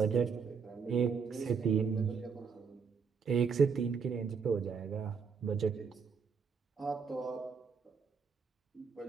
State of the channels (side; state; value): left; quieter; 5.9 dB